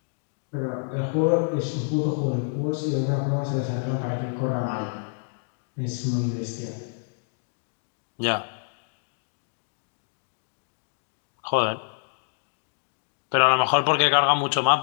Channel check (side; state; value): right; silent; digital silence